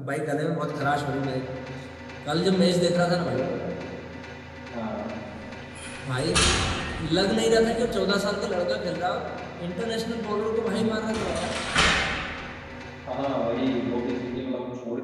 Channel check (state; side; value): identical; both; correlation 1.00